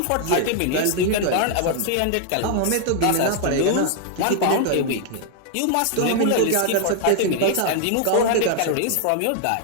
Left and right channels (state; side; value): different; both; correlation 0.00